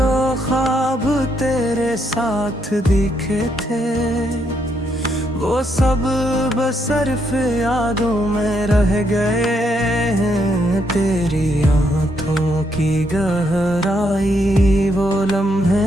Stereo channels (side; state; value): both; normal; correlation 0.76